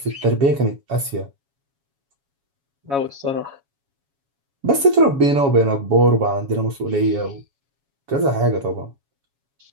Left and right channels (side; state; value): left; late; 7.2 ms